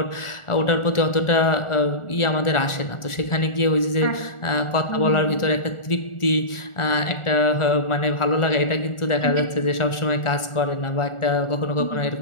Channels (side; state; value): right; late; 1.4 ms